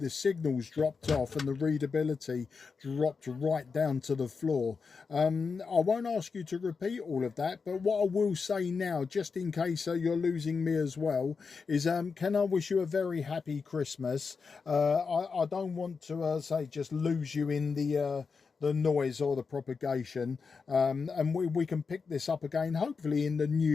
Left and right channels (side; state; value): right; quieter; 5.1 dB